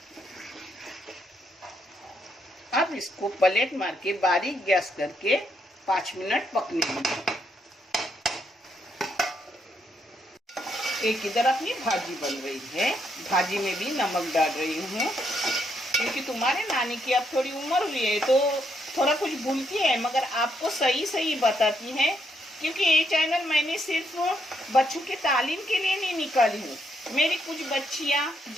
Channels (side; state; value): both; normal; correlation 0.76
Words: अब इसको प्लेट मार के बारीक गैस करके 5 मिनट पकने दीजिए। एक इधर अपनी भाजी बन रही है, भाजी में भी नमक डाल रही हूँ, क्योंकि तुम्हारे नानी की अब थोड़ी उम्र हुई है तो थोड़ा कुछ भूलती है, मगर आपको सही सही बताती है। क्योंकि ये चैनल मैंने सिर्फ बच्चों के तालीम के लिए नहीं निकाली हूँ। मेरी कुछ बच्चियाँ